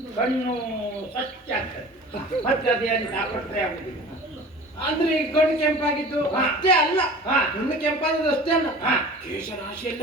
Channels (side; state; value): both; normal; correlation 0.41